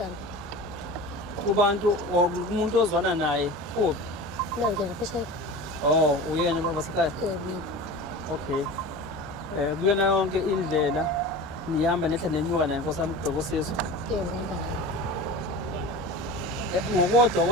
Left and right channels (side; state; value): both; normal; correlation 0.34